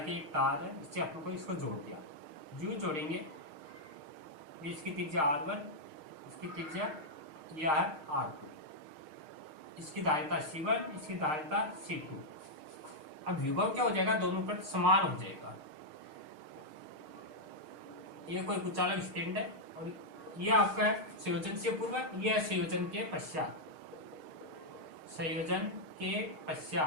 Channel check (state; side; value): late; left; 6.5 ms